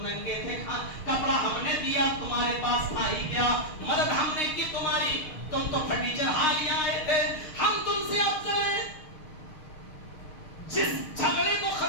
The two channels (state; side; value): late; right; 6.5 ms